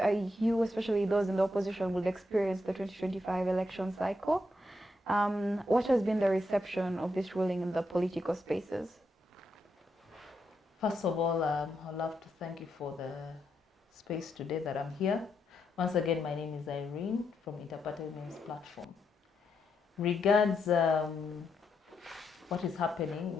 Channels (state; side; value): normal; both; correlation 0.81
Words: especially those in the opposition, will experience the 2025 election cycle? What has been the reception of this ruling in the political spaces? First of all, I'd love to thank you for the space today that I'm here. Once again, my name is Irene from Interparty Women's Platform. Regards what is happening,